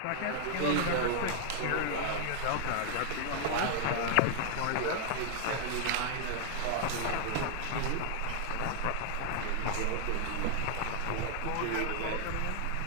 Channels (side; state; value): both; different; correlation 0.00